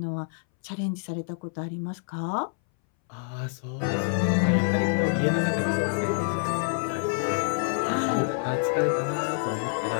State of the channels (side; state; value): right; silent; 60 dB below the other